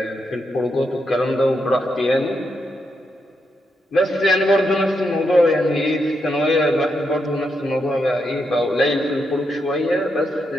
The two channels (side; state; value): both; normal; correlation 0.82